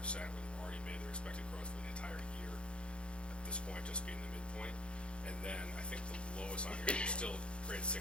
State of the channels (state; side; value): late; right; 0.057 ms